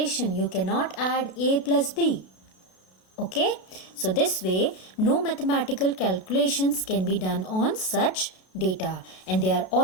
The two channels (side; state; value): right; late; 32 ms